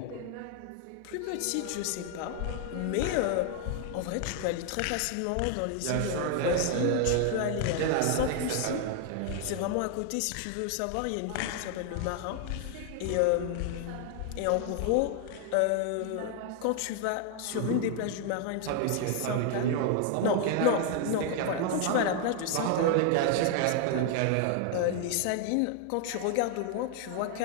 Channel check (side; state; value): both; different; correlation 0.00